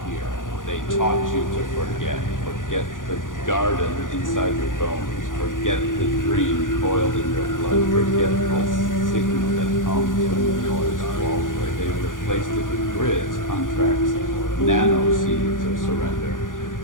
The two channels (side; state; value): right; late; 0.88 ms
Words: hear. They taught you to forget. Forget the garden inside your bones. Forget the dream coiled in your blood. Forget the signal that hums when the noise falls away. They replaced it with grids, contracts, nano seeds of surrender.